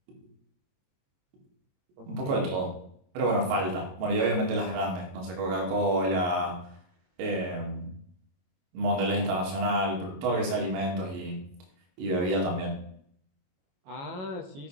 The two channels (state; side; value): late; left; 22 ms